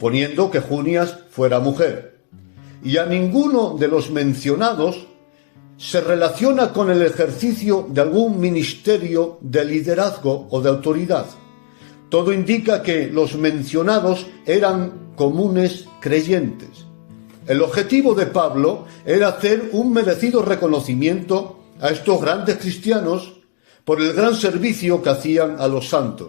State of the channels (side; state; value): right; silent; digital silence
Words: que Junias fuera mujer. y a ninguno de los mencionados se relaciona con el ejercicio de algún ministerio de liderazgo o de autoridad. Todo indica que los mencionados eran comunes creyentes. El objetivo de Pablo era hacer un merecido reconocimiento a estos grandes cristianos por el gran servicio que hacían a los